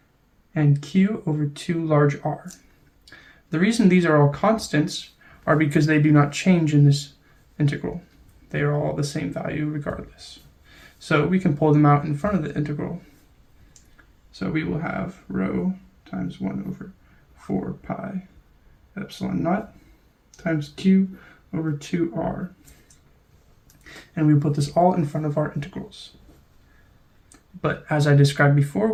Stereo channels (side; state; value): both; identical; correlation 1.00